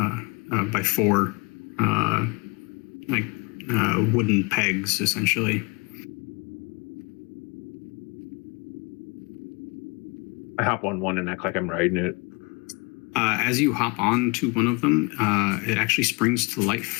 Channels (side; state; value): right; quieter; 28.9 dB